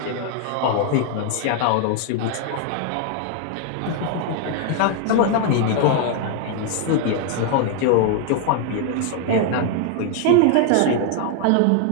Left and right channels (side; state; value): both; different; correlation 0.00